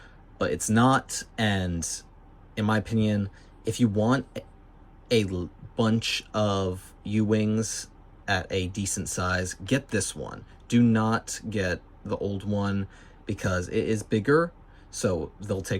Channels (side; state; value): both; identical; correlation 1.00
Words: but it's not, and in my opinion, if you want a bunch of U-Wings at a decent size, get this one. Do not get the old one because it is bigger, so they'll